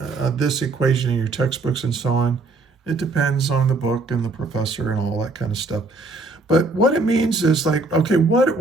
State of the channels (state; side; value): quieter; left; 3.4 dB